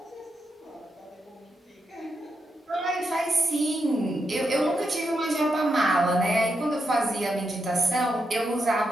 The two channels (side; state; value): both; normal; correlation 0.84